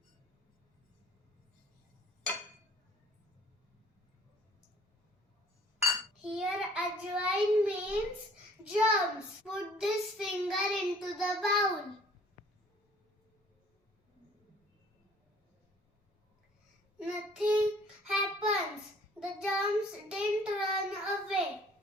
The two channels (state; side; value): normal; both; correlation 0.55